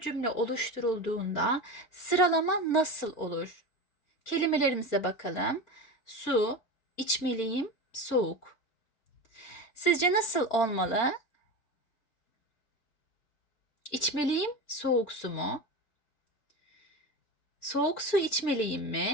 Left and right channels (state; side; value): late; right; 4.4 ms